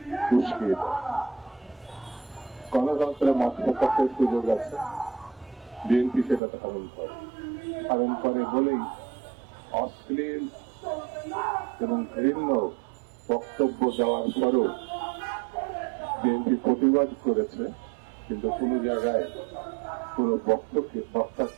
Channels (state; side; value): drops out; left; at 6.4 s